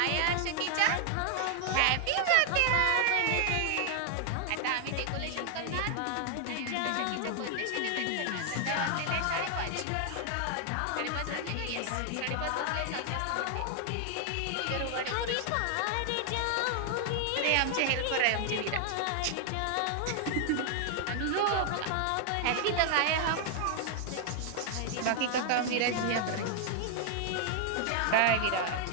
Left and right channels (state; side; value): different; both; correlation 0.00